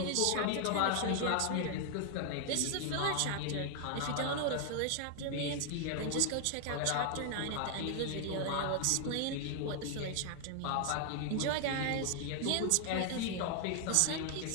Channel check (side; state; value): both; different; correlation 0.00